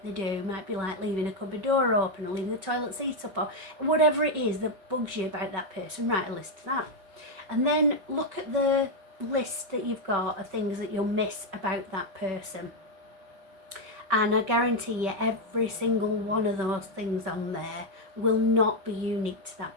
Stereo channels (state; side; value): late; left; 5.2 ms